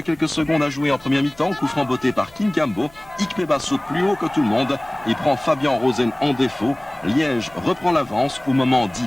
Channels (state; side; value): noise; left; hum, 28 dB below the sound